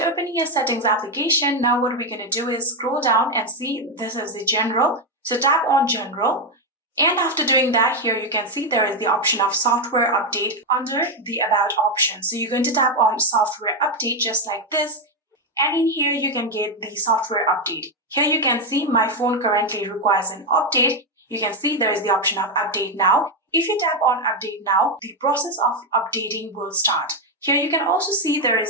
opening your settings application, now what we're going to do is scroll down and see this is the general. So tap on general. And after doing that, here you can see there is the option of software update under the about option. So you're going to tap on software update just like this. And in here, you can get the software update. Here you can see my phone currently requires an update. You can see there is the option of update now. If you tap on update now, the process of updating will start. Here you can also see there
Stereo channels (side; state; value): both; normal; correlation 0.06